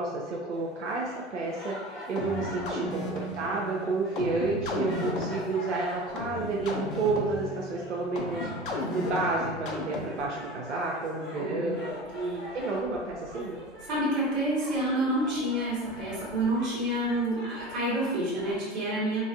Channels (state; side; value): normal; both; correlation 0.36